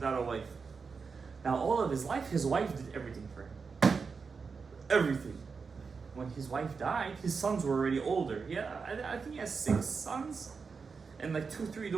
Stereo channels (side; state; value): left; quieter; 5.2 dB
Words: a wife. Now all of his life, his wife did everything for him. Everything. When his wife died, his sons were already older. I think he has 6 sons and like 2-3